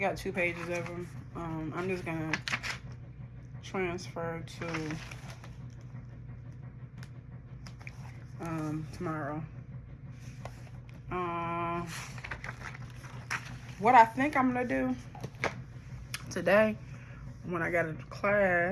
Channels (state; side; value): identical; both; correlation 1.00